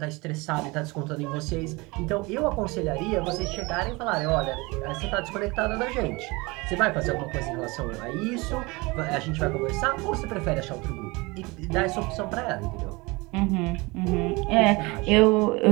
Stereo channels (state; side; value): quieter; left; 24.7 dB